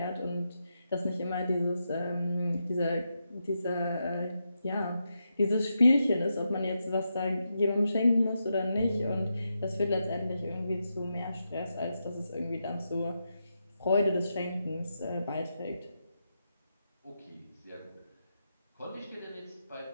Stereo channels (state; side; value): inverted; both; correlation -0.86